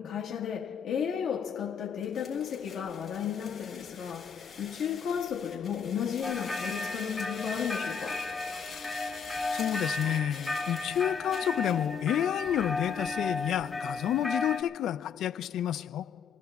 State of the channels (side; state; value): right; quieter; 7.1 dB